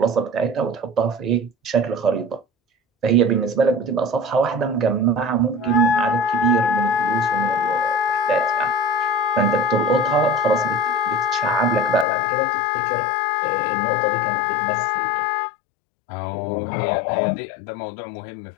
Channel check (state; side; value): drops out; right; at 12.1 s